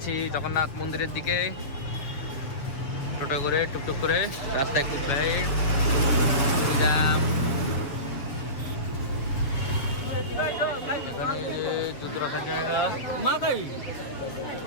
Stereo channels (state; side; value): late; right; 7.5 ms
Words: জগন্নাথ মন্দিরের দিকে, টোটো করে টুকটুক করে, রাস্তায় খুব ভিড়, জ্যাম। এখানে জুতো রাখার জায়গা, মাথায়